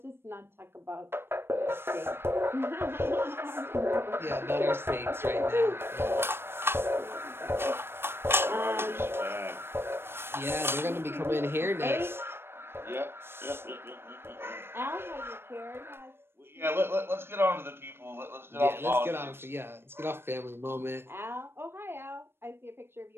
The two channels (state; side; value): late; left; 0.11 ms